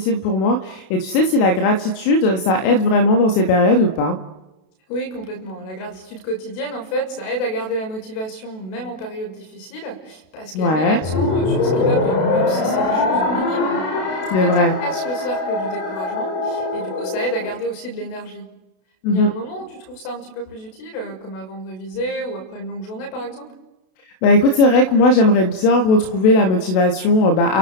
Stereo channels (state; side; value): late; right; 32 ms